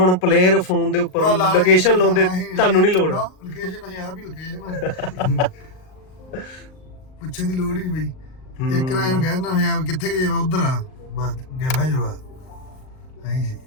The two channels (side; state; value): right; late; 38 ms